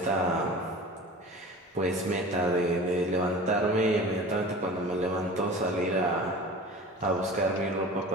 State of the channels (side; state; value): both; normal; correlation 0.38